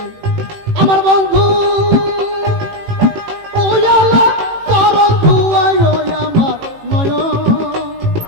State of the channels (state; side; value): late; left; 18 ms